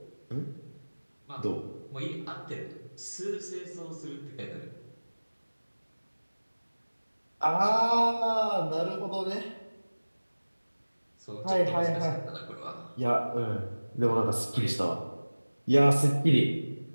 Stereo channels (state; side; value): inverted; both; correlation -1.00